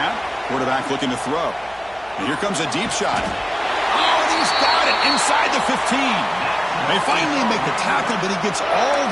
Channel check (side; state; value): left; noise; hum, 28 dB below the sound